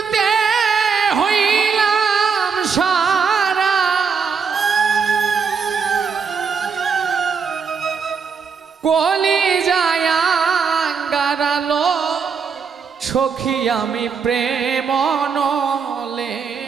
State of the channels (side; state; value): left; quieter; 5.9 dB